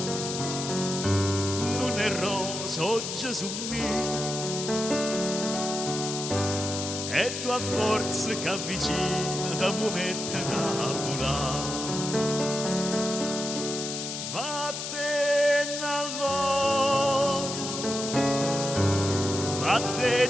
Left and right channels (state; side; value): noise; left; hiss, 5 dB below the sound